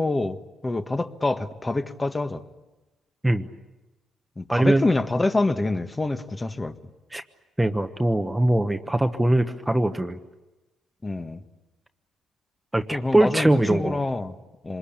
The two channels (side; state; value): both; normal; correlation 0.96